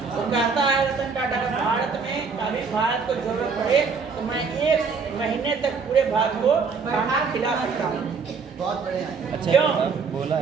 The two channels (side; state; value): left; quieter; 5.2 dB